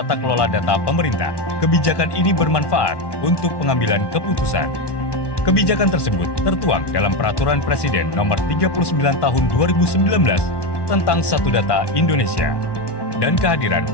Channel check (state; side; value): late; right; 1.1 ms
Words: kelola data pemerintah. Kebijakan ini bermanfaat untuk pengambilan keputusan. Kebijakan tersebut tertuang dalam Peraturan Presiden Nomor 39 Tahun 2019 tentang Satu Data Indonesia dan kehadiran